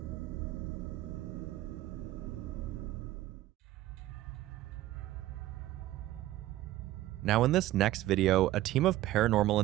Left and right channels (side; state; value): left; quieter; 15.4 dB